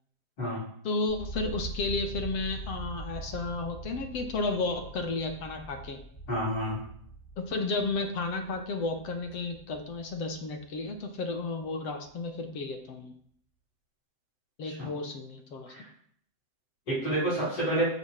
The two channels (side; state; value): right; late; 7.7 ms